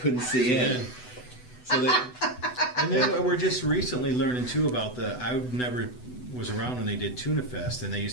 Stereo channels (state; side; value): late; right; 8.0 ms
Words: see in. So And then we're just recently learning too about I never was around when they did Tuna Fest, and they